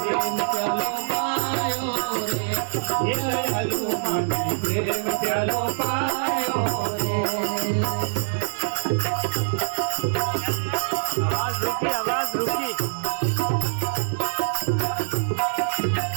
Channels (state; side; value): silent; left; 62 dB below the other